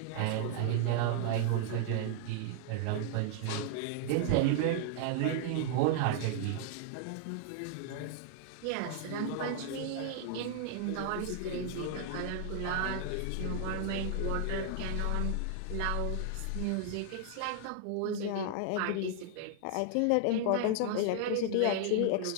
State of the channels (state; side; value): different; both; correlation 0.00